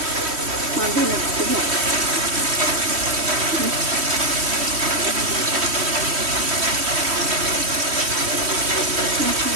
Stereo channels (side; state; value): left; late; 3.1 ms